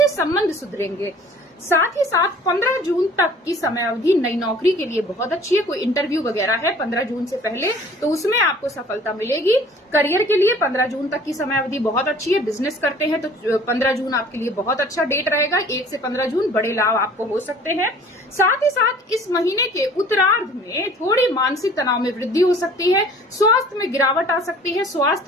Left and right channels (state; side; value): normal; both; correlation 0.50